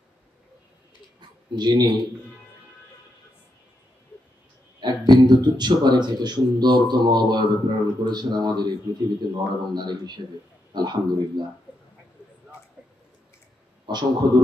যিনি এক বিন্দু তুচ্ছ পানি থেকে সুন্দরতম অবয়বে প্রেরণ করেছেন আমাদের এই পৃথিবীতে নর এবং নারী হিসেবে। আলহামদুলিল্লাহ। অসংখ্য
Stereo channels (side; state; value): both; normal; correlation 0.83